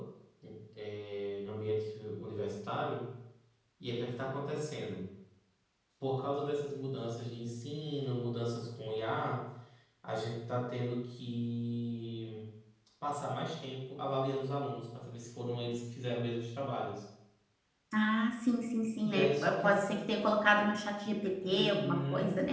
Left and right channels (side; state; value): both; identical; correlation 1.00